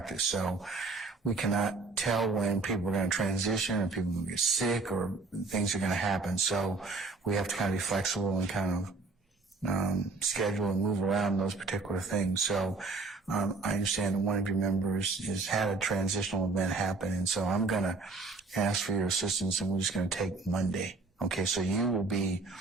So we cannot tell when people are going to transition or people will get sick or things are going to happen. So we have to kind of be flexible and kind of schedule and move around those particular things. So I understand that one of your members has had a transitional event happen, and so I'm going to ask for your assistance, and we're just going to take Monday. Okay, so you will be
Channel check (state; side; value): quieter; left; 3.8 dB